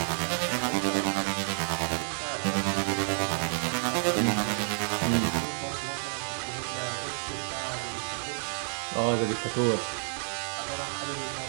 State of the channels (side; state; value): left; silent; digital silence